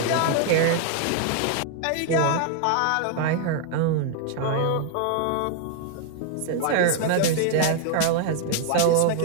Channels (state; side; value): different; both; correlation 0.00